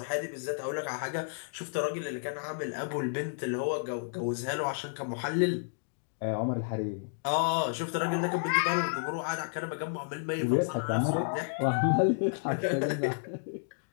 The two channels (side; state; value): right; silent; digital silence